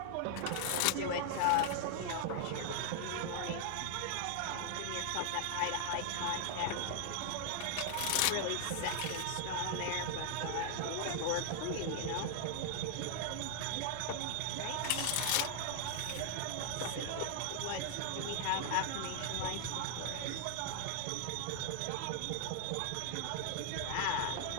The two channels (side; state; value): both; different; correlation 0.00